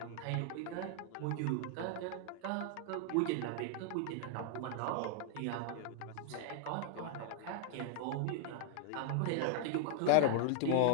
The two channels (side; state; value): both; different; correlation -0.01